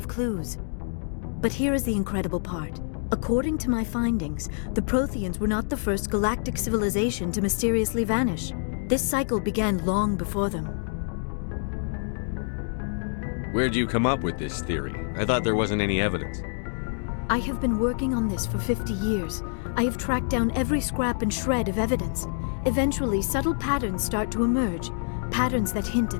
clues. But here is the incredible part. According to my findings, the Protheans were not the first galactic civilization to mysteriously vanish. This cycle began long before them. Where'd you come up with this theory? I thought there wasn't any evidence. I have been working on this for 50 years. I have tracked down every scrap and shred of evidence. Eventually, subtle patterns start to emerge, patterns that hint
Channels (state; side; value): silent; right; 59 dB below the other